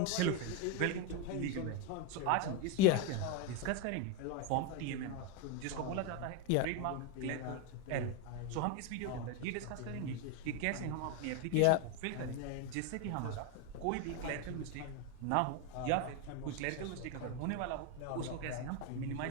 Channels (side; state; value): both; different; correlation 0.02